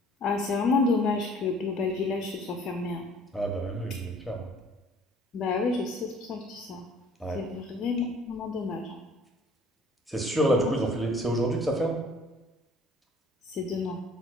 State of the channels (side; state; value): both; normal; correlation 0.54